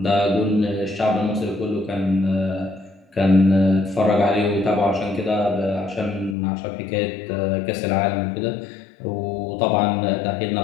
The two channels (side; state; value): right; drops out; at 6.4 s